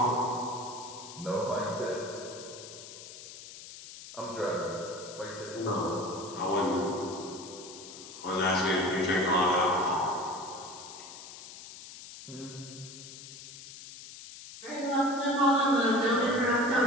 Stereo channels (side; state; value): left; noise; hiss, 14 dB below the sound